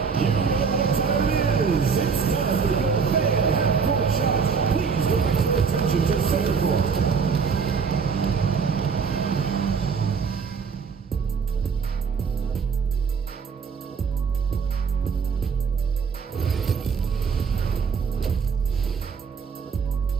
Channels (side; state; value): left; quieter; 5.8 dB